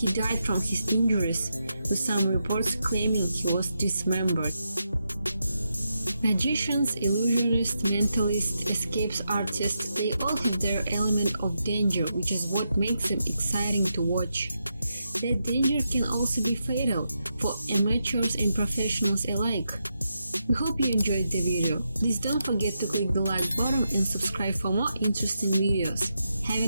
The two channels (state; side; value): inverted; both; correlation -0.85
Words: died from his injuries, with some reports claiming he was dismembered. Magicians, illusionists, mentalists, escapes artists, they all have their element of danger, which is what makes them exciting to watch. That danger can also be fatal for amateurs and professionals alike. We hope you enjoyed the video. Please don't forget to click the like button and subscribe for more interesting videos. Have